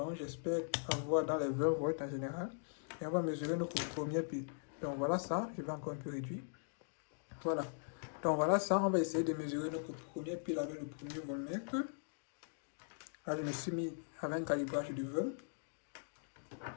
j'espère avoir dans les 20 volts en général. Et on va mesurer notre première pile. Donc, voilà ça. Je vais encore un peu réduire. Voilà. Donc, voilà ça. On va essayer de mesurer notre première pile avec le premier voltmètre. Là, je me suis mis avec un calibrage de 20.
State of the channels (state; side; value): silent; right; digital silence